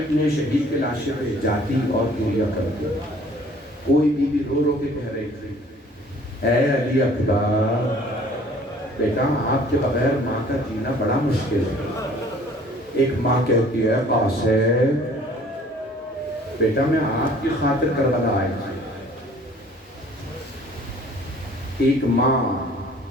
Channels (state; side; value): normal; both; correlation 0.54